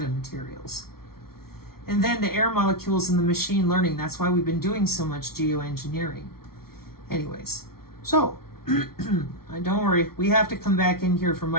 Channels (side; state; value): right; late; 0.94 ms